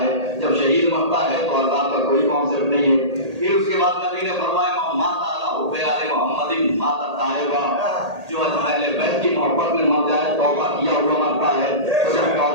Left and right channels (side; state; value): left; late; 1.8 ms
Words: ہے، جب شہید مرتا ہے تو عذاب کا کوئی کانسیپٹ نہیں ہے۔ پھر اس کے بعد نبی نے فرمایا مات اعلیٰ حب حب آل محمد مات الطائبہ، جو اہل بیت کی محبت میں مر جائے توبہ کیا ہوا مرتا ہے، تو جب